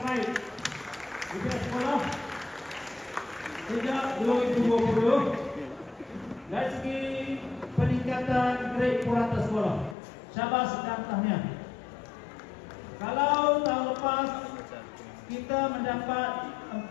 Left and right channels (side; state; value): right; drops out; at 10.0 s